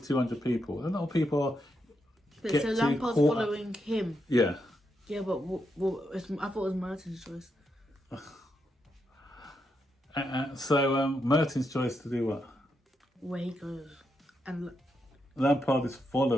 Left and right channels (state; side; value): normal; both; correlation 0.83